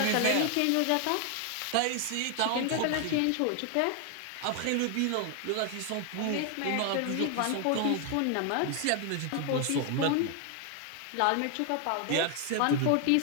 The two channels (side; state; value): both; different; correlation 0.00